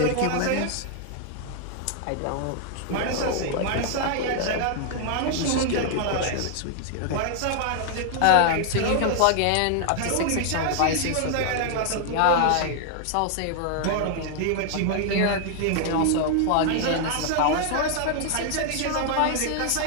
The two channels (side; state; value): both; different; correlation 0.00